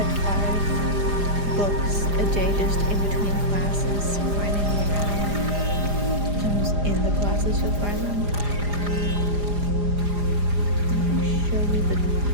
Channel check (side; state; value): left; late; 4.9 ms